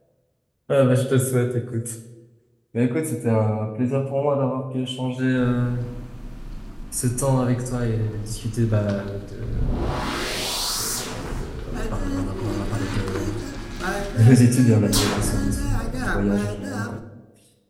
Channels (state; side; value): identical; both; correlation 1.00